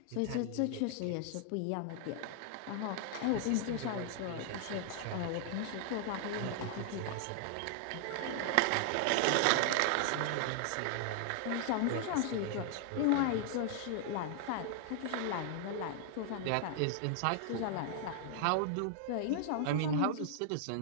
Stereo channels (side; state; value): both; different; correlation 0.00